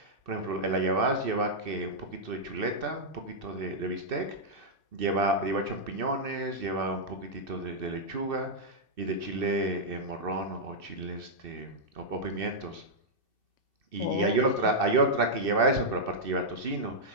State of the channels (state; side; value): late; left; 2.6 ms